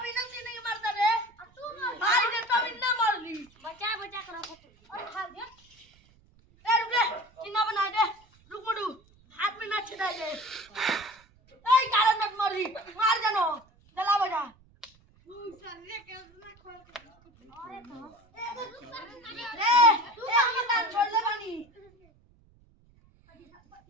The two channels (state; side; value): noise; right; rumble, 30 dB below the sound